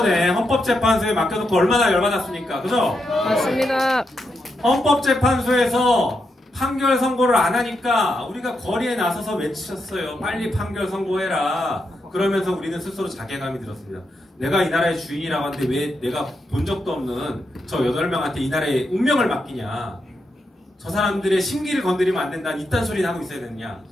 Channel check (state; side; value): normal; both; correlation 0.84